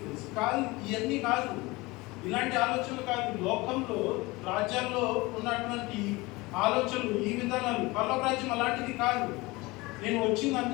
కాదు, ఇవన్నీ కాదు, ఇలాంటి ఆలోచనలు కాదు. లోకంలో రాజ్యాల్లో ఉన్నటువంటి ఆలోచనలు, ఈ విధానాలు, పరలోక రాజ్యం అలాంటిది కాదు. నేను వచ్చింది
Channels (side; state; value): right; quieter; 22.6 dB